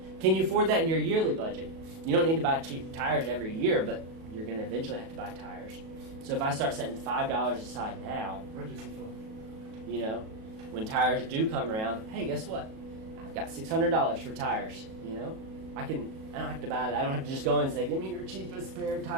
Can you afford that in your yearly budget? You don't need to buy tires every year, but you're going to eventually have to buy tires. So if I start setting $5 aside now, you know, when tires do come around, hey, guess what? I've got $600 for tires. You know, I don't have to buy that. I don't have to just go and say, give me your cheapest pair of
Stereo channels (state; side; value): late; left; 37 ms